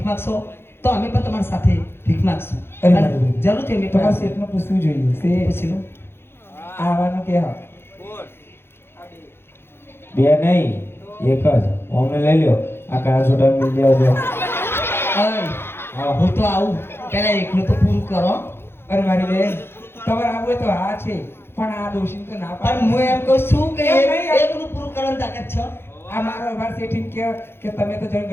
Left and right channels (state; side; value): late; right; 0.11 ms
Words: માગશો તો અમે પણ તમારી સાથે ભીખ માગશું અરે અને મારી બેન. જરૂરથી અમે તમારા પણ શેઠને પૂછવું જોઈએ તે પૂછી લો આવવાનું કે હા બે નહીં એક જ અમને લઈ લ્યો આ કાળા છોટા મિલ જાવ અરે હું તો આવું પહેલા એકલું તો પૂરું કરો અરે મારી બેન તમારે આવું હોય તો હા છે પણ આ દોષી તો ના પણ પાડે હું એમ કહું છું કે એમ નહીં. એકલું પૂરું કરવાની તાકાત છે આ મારો અમાર શેઠી કે તમે તો જણ